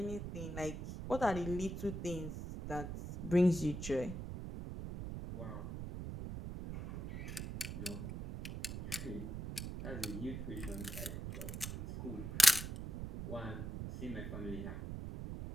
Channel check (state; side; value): noise; right; rumble, 6 dB below the sound